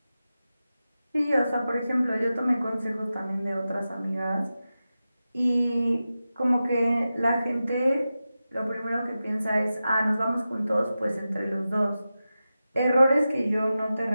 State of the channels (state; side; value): inverted; both; correlation -0.93